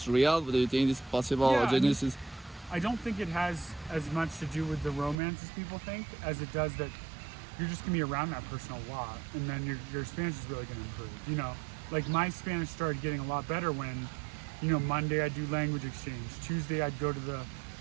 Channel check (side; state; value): left; drops out; at 5.2 s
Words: real? Do you think it's possible? I don't think it has as much to do with the romance as people think, as it does that you're just gonna be around that person a lot, and then your Spanish is really gonna improve. Like my Spanish started getting a lot better when, Monday I'd do language exchange, Tuesday I'd go to the